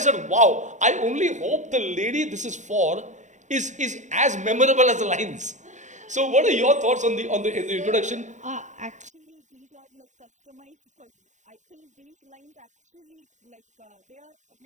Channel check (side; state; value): left; late; 0.35 ms